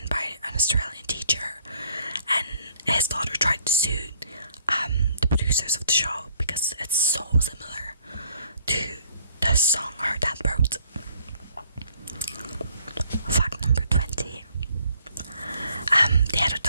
by an Australian teacher, and his daughter tried to sue the producers of the show because it's so similar to the song her dad wrote. Fact number 20. They had a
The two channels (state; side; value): inverted; both; correlation -0.62